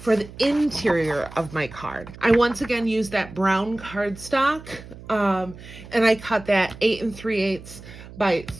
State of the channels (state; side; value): noise; right; hum, 16 dB below the sound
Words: the interior of my card. I once again used that brown cardstock, and I cut that 8 3/8 by